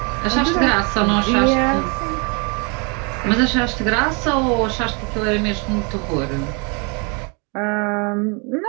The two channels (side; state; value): left; quieter; 33.6 dB